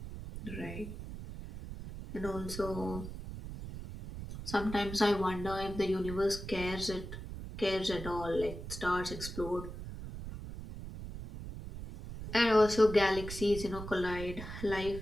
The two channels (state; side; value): noise; right; rumble, 9 dB below the sound